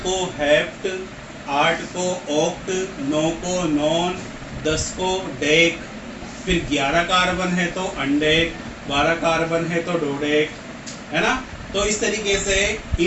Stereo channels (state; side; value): identical; both; correlation 1.00